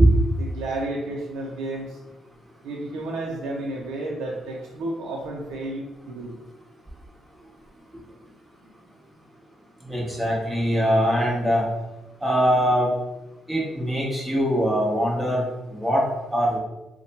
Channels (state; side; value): normal; both; correlation 0.81